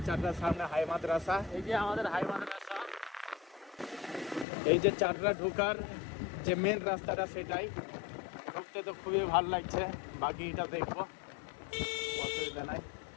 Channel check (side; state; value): right; drops out; at 4.5 s